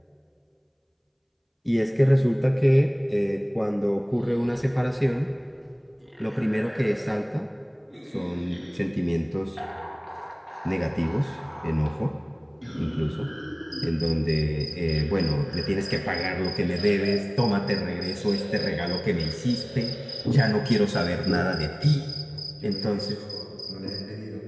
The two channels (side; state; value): both; identical; correlation 1.00